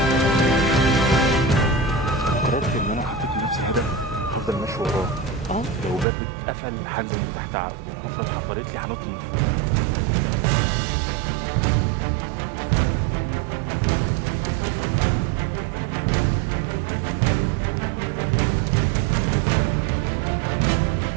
قررت ان انا حطيت لنفسي هدف هفضل ماشي وراه. لو باب اتقفل هنزل من تحت هفضل حفرت لي هنطني.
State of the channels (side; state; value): left; drops out; at 6.1 s